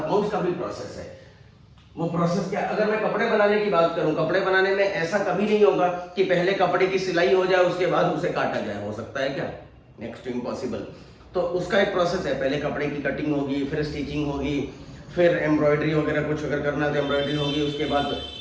का भी प्रोसेस है। वो प्रोसेस क्या? अगर मैं कपड़े बनाने की बात करूं, कपड़े बनाने में ऐसा कभी नहीं होगा कि पहले कपड़े की सिलाई हो जाए उसके बाद उसे काटा जाए। हो सकता है क्या? Next to impossible. तो उसका एक प्रोसेस है, पहले कपड़े की कटिंग होगी, फिर स्टिचिंग होगी, फिर एम्ब्रॉयडरी वगैरह कुछ अगर करना तो एम्ब्रॉयडरी होगी, उसके बाद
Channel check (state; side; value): identical; both; correlation 1.00